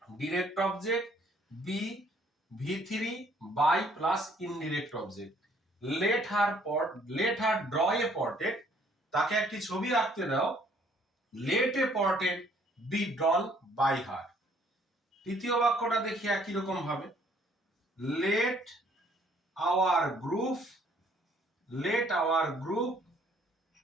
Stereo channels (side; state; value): both; normal; correlation 0.62